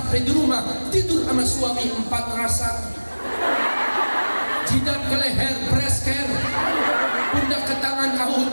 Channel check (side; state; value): both; inverted; correlation -1.00